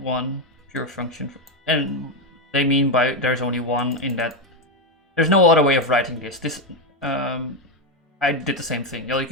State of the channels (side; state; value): both; normal; correlation 0.08